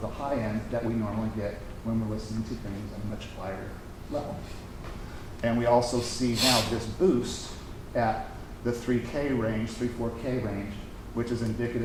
the high end that we normally get when we're listening to things at a much higher level. And we also see now this boost at the 3K range, 3-4K range, which is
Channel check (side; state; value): both; identical; correlation 1.00